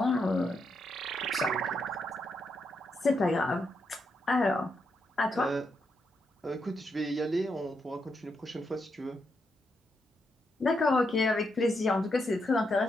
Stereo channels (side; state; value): both; normal; correlation 0.81